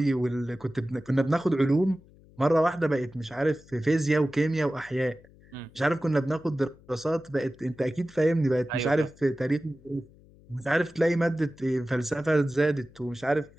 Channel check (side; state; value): left; noise; hum, 26 dB below the sound